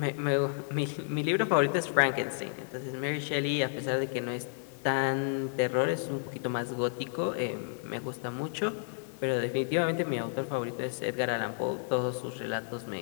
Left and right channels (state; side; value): silent; right; digital silence